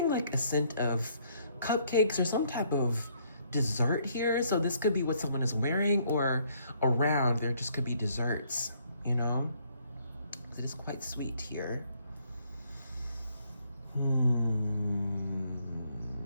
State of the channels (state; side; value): inverted; both; correlation -0.68